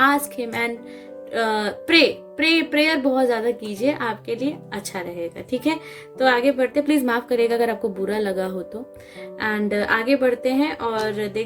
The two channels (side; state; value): both; identical; correlation 1.00